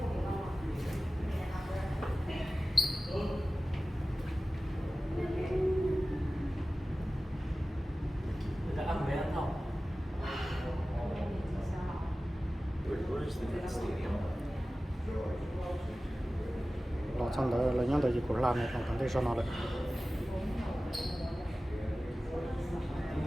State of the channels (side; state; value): both; normal; correlation 0.96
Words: lo xong đó là những cái gì của làm này còn cần để cho nó được